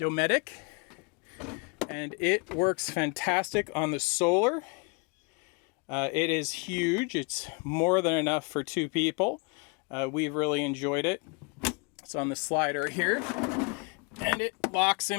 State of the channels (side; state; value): right; quieter; 31.9 dB